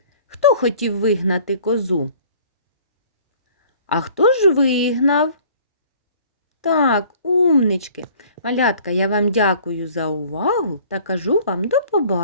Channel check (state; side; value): inverted; both; correlation -0.52